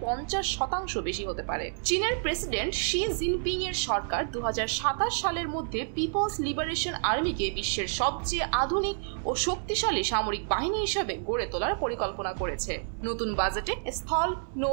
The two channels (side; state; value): left; silent; 58 dB below the other